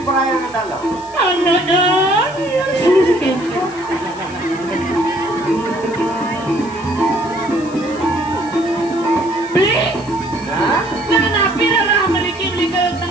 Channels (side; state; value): left; noise; hiss, 21 dB below the sound